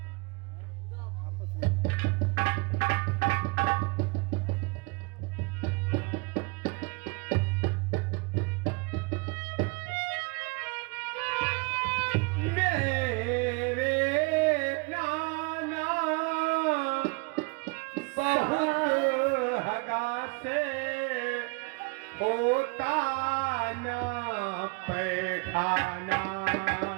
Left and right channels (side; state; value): left; quieter; 30.1 dB